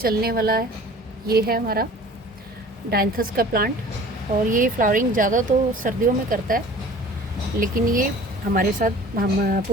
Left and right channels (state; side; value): normal; both; correlation 0.45